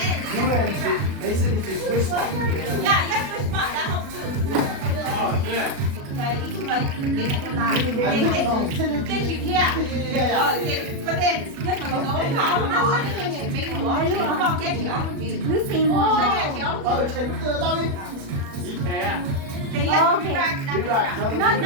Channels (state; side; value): late; left; 37 ms